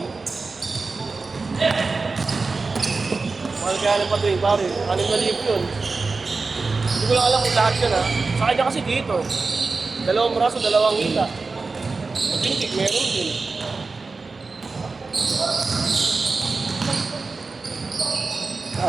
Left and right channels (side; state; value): left; quieter; 4.1 dB